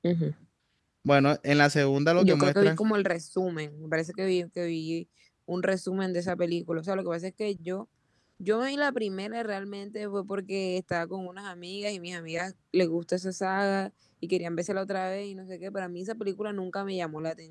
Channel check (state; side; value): identical; both; correlation 1.00